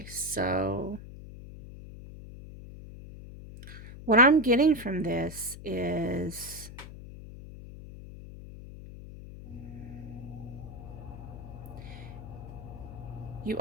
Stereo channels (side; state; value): left; noise; hum, 13 dB below the sound